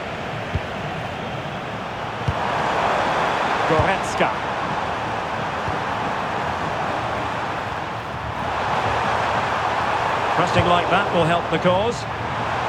Goretzka. Pressing like that will help the cause.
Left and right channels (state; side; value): identical; both; correlation 1.00